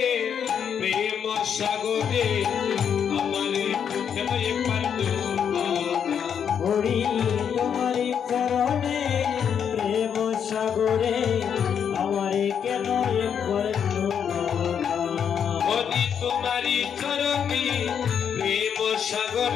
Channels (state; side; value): quieter; right; 7.8 dB